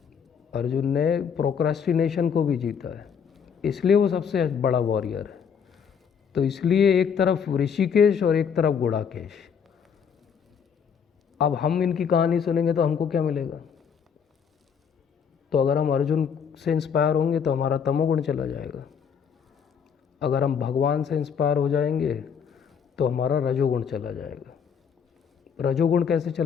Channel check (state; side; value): quieter; right; 7.1 dB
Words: अर्जुन ने प्रोक्रेस्टिनेशन को भी जीता है, इसलिए वो सबसे बड़ा वॉरियर है। तो इसलिए एक तरफ ऋषिकेश और एक तरफ गुड़ाकेश। अब हम इनकी कहानी सुनेंगे तो हमको क्या मिलेगा? तो अगर हम अर्जुन से इंस्पायर होंगे तो हमारा तमोगुण चला जाएगा। अगर हम भगवान से इंस्पायर हो जाएंगे तो हमारा रजोगुण चला जाएगा। रजोगुण कैसे